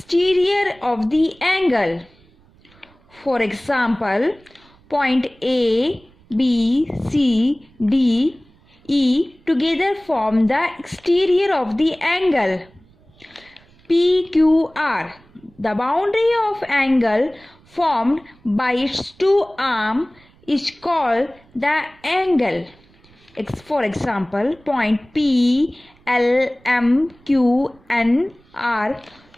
of the angle. For example, point A, B, C, D, E together form the exterior of the angle. PQR. The boundary of angle formed by its two arms is called the angle. For example, point P, L, M, Q, N, R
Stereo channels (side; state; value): right; noise; rumble, 29 dB below the sound